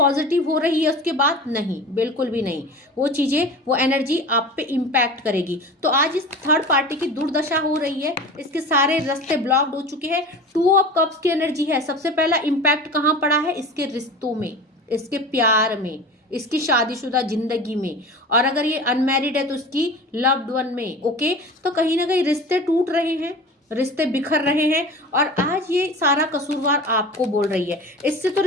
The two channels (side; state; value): both; normal; correlation 0.35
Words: हो रही है, उसके बाद नहीं, बिल्कुल भी नहीं। वो चीजें, वो एनर्जी आप पे इम्पैक्ट करेगी। तो आज इस थर्ड पार्टी की दुर्दशा हो रही है, इसके सारे रास्ते ब्लॉक्ड हो चुके हैं। 2 ऑफ कप्स की एनर्जी है। सबसे पहला इम्पैक्ट कहाँ पड़ा है, इसके रिश्तों में, इसके प्यार में, इसकी शादीशुदा जिंदगी में, और अगर ये अनमैरिड है तो उसकी लव्ड वन में। ओके, तो कहीं ना कहीं रिश्ते टूट रहे हैं, रिश्ते बिखर रहे हैं और आज ये सारा कसूरवार आपको बोल रही है। इससे तो